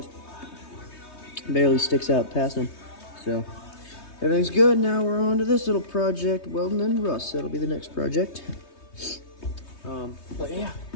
barely sticks out past them. So everything's good. Now we're on to this little project, welding and rust. That'll be the next project. But yeah,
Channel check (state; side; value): late; right; 3.2 ms